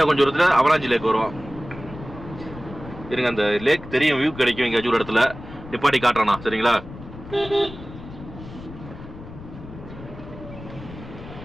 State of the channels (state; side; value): noise; left; rumble, 14 dB below the sound